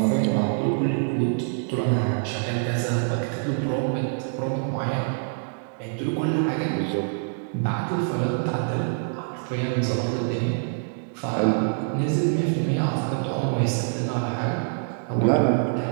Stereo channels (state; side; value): silent; left; digital silence